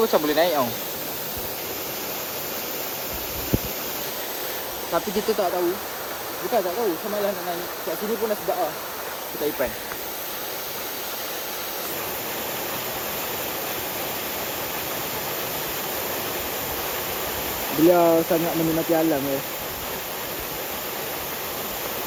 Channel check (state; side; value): identical; both; correlation 1.00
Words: macam boleh naik tau. Tapi kita tak tahu. Bukan tak tahu, sama lah nak naik. Kat sini pun dah sedap lah. Kita Ipan. Beliau sangat menikmati alam ya.